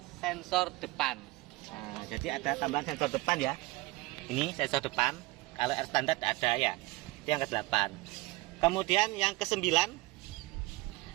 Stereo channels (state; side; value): quieter; left; 21.4 dB